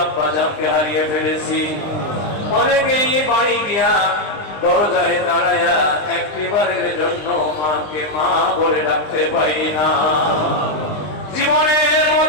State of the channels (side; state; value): right; late; 20 ms